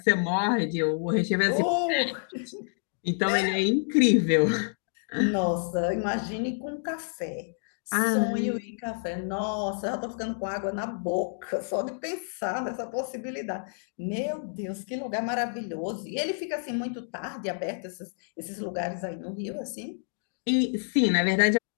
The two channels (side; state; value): right; silent; digital silence